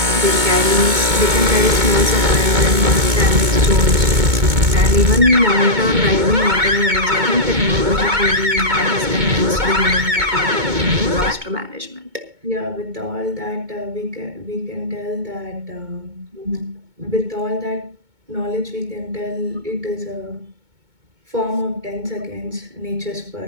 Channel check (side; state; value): left; late; 2.2 ms